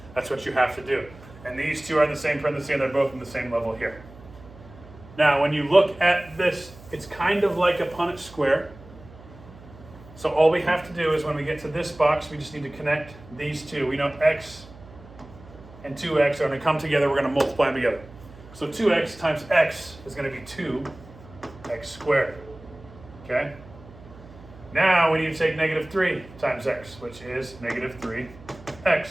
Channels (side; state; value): right; noise; hum, 20 dB below the sound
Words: That's what you have to do. And these two are in the same parenthesis, and they're both in the same level here. Now, when you look at this, it's kind of like a Punnett square. So all we have to do is when we get to this box, we just need to connect these two. We know x and 2x are going to come together. We're going to multiply them together. So 2x times x is going to be 2x squared. Okay? Now we need to take negative 3 times x, which is negative 3x.